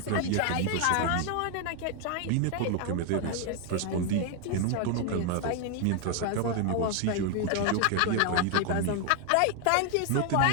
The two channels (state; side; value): different; both; correlation 0.01